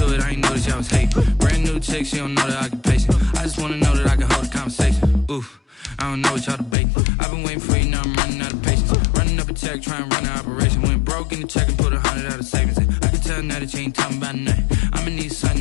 it, I ain't noticed y'all was hating. Brand new chick, she don't know that I can pace it. I just want to know that I can hold a conversation. Oof, I don't know what y'all debating. I've been waiting for you, now I'm running out of patience. Running up a check, trying to run an operation. Went broke in the check and put 100 out of savings in. I can tell now that you ain't talking about nothing. I'ma need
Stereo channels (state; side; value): drops out; right; at 6.8 s